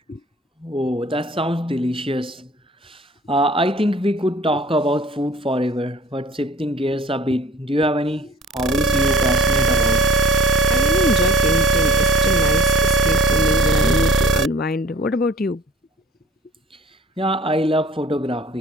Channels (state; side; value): normal; both; correlation 0.45